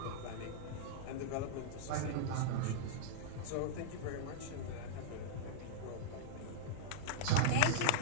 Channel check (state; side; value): different; both; correlation -0.02